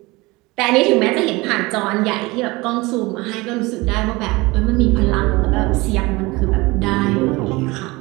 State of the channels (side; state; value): left; quieter; 22.8 dB